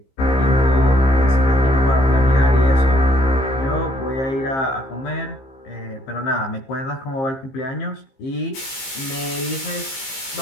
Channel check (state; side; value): late; right; 15 ms